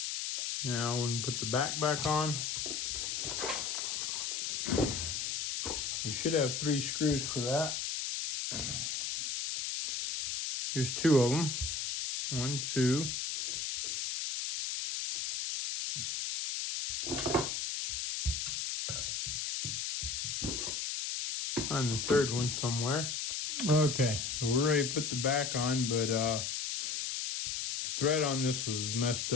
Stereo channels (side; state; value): left; noise; hiss, 2 dB below the sound